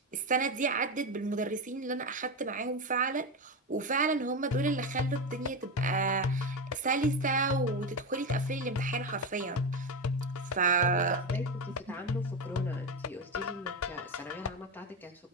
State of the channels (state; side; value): normal; both; correlation 0.16